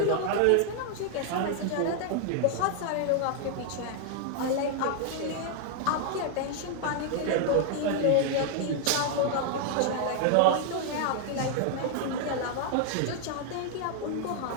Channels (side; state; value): both; different; correlation 0.00